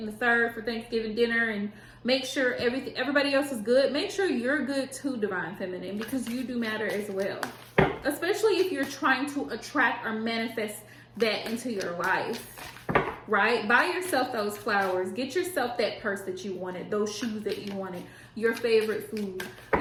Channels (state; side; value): identical; both; correlation 1.00